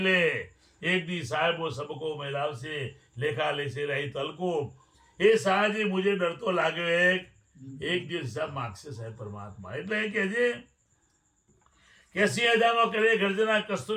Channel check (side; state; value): both; identical; correlation 1.00